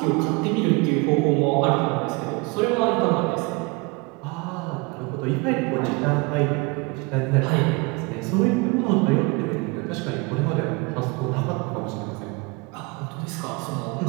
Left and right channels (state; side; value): quieter; left; 27.4 dB